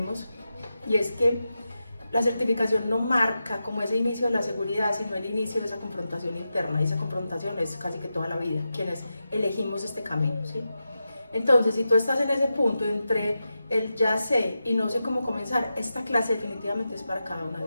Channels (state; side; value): inverted; both; correlation -0.90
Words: y es que la certificación no marca como ese inicio de la seguridad, sino el inicio de esa confrontación interna, y esa confrontación es casi que toda la vida, quienes elegimos este camino, ¿sí? Entonces, si tú estás en ese punto entre el ya sé y no sé cómo comenzar, esta clase definitivamente es para cada una de